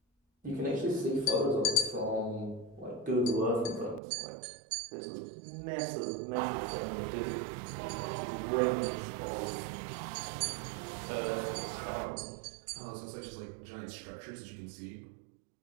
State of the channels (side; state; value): left; drops out; at 4.0 s